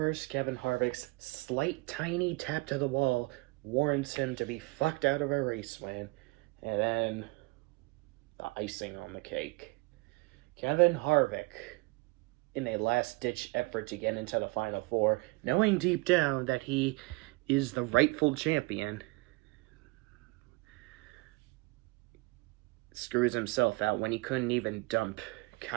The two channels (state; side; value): quieter; left; 25.1 dB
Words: Kevin Harvick's slight tiny tap to the wall warrants him to be fucked out of a race win. And then, the icing on the cake. Kevin Harvick, in a last-ditch effort to get into the Final Four, knowing deep down that he is the rightful champion, screws himself out when he couldn't even dump